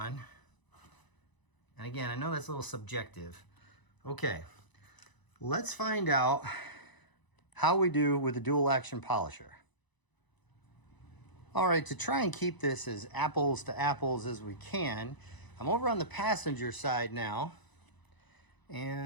And again, I know that's a little subjective. Okay, let's find out how we do with the dual action polisher. All right, to try and keep this as apples to apples as we can, I'm over on the passenger side now.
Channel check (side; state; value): right; late; 1.0 ms